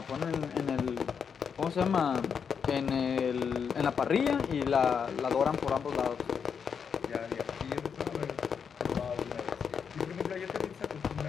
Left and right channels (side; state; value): right; quieter; 6.7 dB